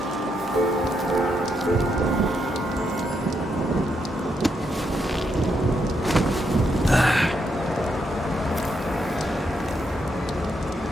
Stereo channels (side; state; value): both; normal; correlation 0.79